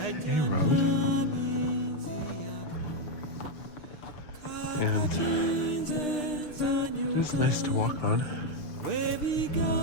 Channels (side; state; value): right; late; 6.6 ms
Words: road. And it is nice to walk on.